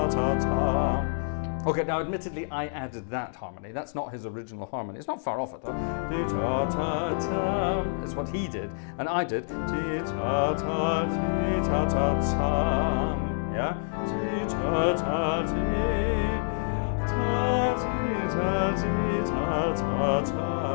ta ta. Okay, now admittedly I added that harmony. That's not his original harmony. It's not far off it though. Ti ta ta ta. It's what he did, and I did. Ti ta ta ti ta ta ta. Yeah. Ti ta ta ti ta ti ta ti ta ta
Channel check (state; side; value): silent; right; digital silence